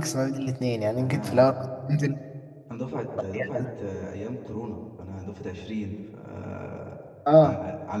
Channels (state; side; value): identical; both; correlation 1.00